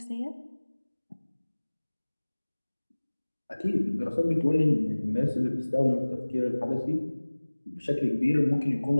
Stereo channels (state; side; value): inverted; both; correlation -1.00